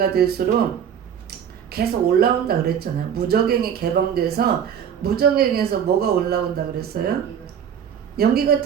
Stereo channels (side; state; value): left; quieter; 8.4 dB